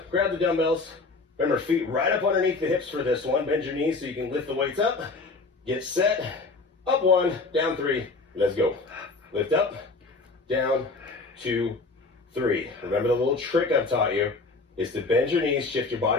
Grab the dumbbells. Remember, feet right up underneath the hips for this one. Bend your knees so you can lift the weights up. Get set. Up 1, down 3. Let's go. Lift up, down, 2, 3. Remember the little trick I've taught you is to bend your knees, shift your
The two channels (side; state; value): right; quieter; 3.8 dB